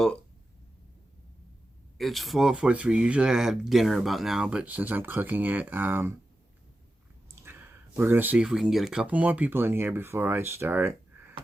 it's 4:43. Usually I have dinner about now, but since I'm cooking it, we're going to see if we can get a couple more people in here before I start.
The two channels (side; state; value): both; normal; correlation 0.91